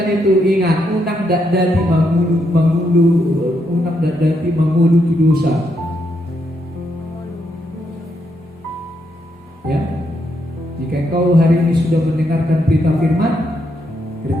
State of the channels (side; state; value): both; normal; correlation 0.79